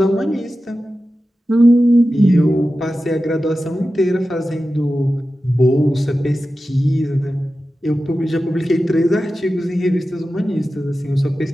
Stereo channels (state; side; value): normal; both; correlation 0.93